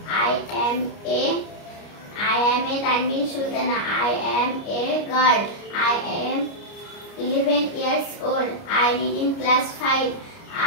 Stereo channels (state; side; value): late; right; 29 ms